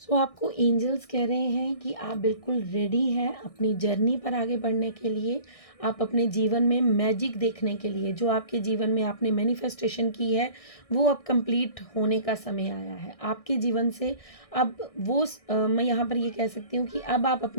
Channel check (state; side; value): late; right; 1.6 ms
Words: सो आपको एंजल्स कह रहे हैं कि आप बिल्कुल रेडी हैं अपनी जर्नी पर आगे बढ़ने के लिए। आप अपने जीवन में मैजिक देखने के लिए, जो आपके जीवन में आपने मैनिफेस्टेशन की है वो अब कंप्लीट होने का समय आया है आपके जीवन से। अब वो मैं यहाँ पर ये कह सकती हूँ कि अब आप